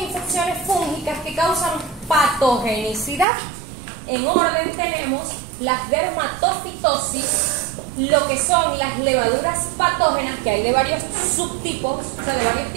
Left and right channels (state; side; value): drops out; left; at 3.2 s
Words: infecciones fúngicas que causan patogenicidad. En orden tenemos las dermatofitosis, lo que son las levaduras patógenas, que hay de varios subtipos, o sea, de varios